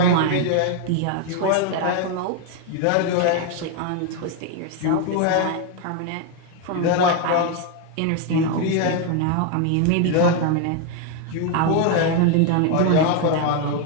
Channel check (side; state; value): both; different; correlation 0.01